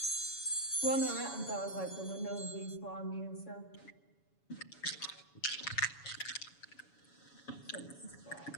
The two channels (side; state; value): right; late; 7.1 ms